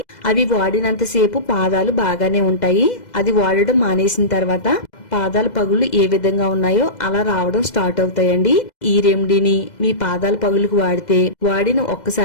అవి వాడినంతసేపు పాదాలు బాగానే ఉంటాయి. అది వాడడం మానేసిన తర్వాత పాదాల పగులు ఏ విధంగా ఉన్నాయో అలా రావడం స్టార్ట్ అవుతాయండి. ఈ రెమెడీని మీ పాదాల పగులకు వాడితే వాడిన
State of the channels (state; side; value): late; right; 2.0 ms